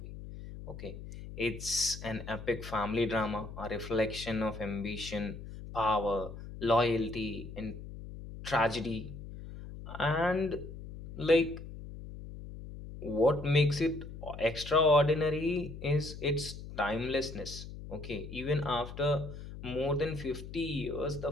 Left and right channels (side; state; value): left; noise; hum, 12 dB below the sound